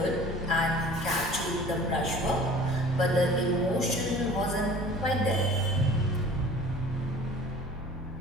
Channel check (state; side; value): normal; both; correlation 0.45